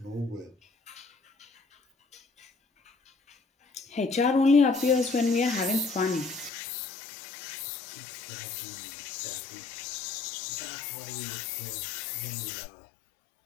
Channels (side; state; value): right; drops out; at 6.5 s